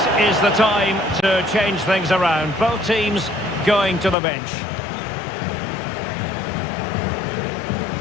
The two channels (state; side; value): drops out; right; at 4.2 s